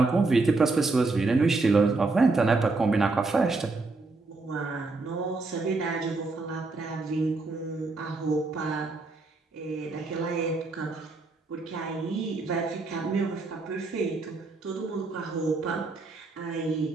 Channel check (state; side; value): quieter; left; 3.6 dB